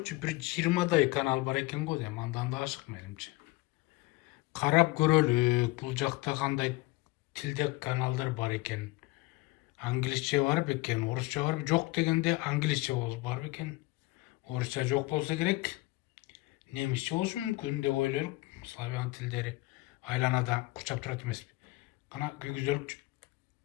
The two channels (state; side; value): quieter; right; 20.6 dB